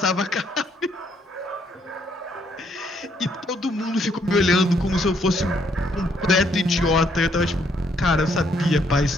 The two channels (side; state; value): both; normal; correlation 0.70